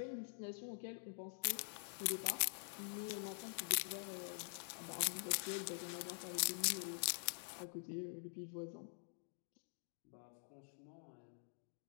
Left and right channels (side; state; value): right; silent; digital silence